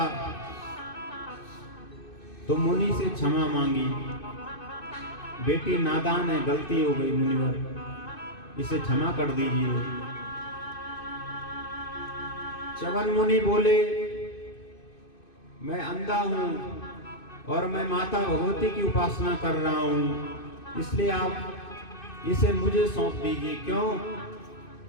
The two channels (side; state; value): right; late; 2.6 ms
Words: तो मुनि से क्षमा मांगी। बेटी नादान है, गलती हो गई मुनिवर, इसे क्षमा कर दीजिए। च्यवन मुनि बोले, मैं अंधा हूं और मैं माता भगवती की उपासना कर रहा हूं, इसलिए आप इसे मुझे सौंप दीजिए। क्यों?